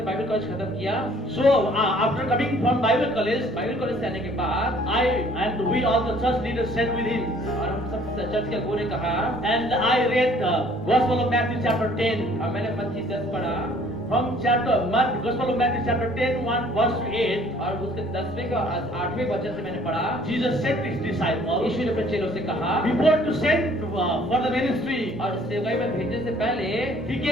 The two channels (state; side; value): normal; both; correlation 0.57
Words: बाइबल कॉलेज खत्म किया, so after coming from Bible college, Bible college से आने के बाद I and we all the church leaders sat with him, और हम सब चर्च के अगुवों ने कहा, and I read the Gospel of Matthew chapter 10. और मैंने मत्ती 10 पढ़ा, From Gospel of Matthew chapter 10, 1 verse to 8, और उसके 10वें का 8वें वचन से मैंने पढ़ा। Jesus said to his disciples, यीशु ने अपने चेलों से कहा, before to send for the ministry, और सेवकाई में भेजने से पहले he